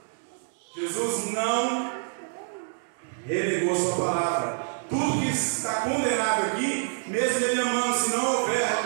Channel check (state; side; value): silent; left; digital silence